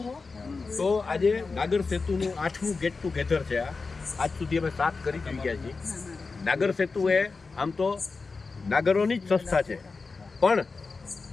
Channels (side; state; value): right; quieter; 4.3 dB